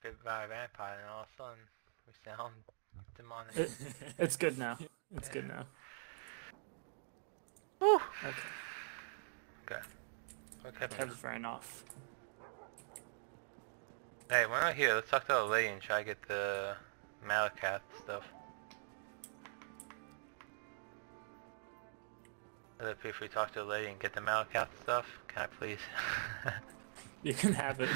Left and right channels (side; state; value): left; silent; digital silence